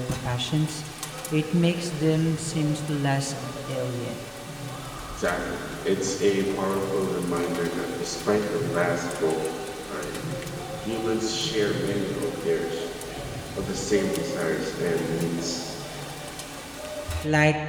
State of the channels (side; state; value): both; identical; correlation 1.00